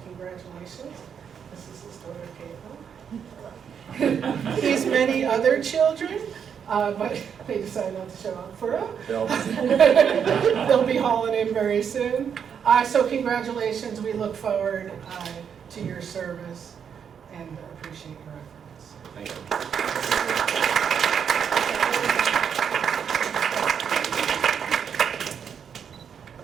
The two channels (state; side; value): quieter; left; 7.5 dB